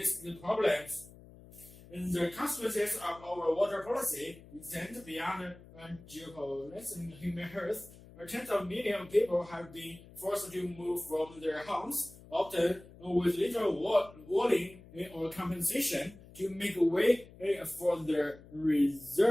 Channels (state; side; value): noise; left; hum, 21 dB below the sound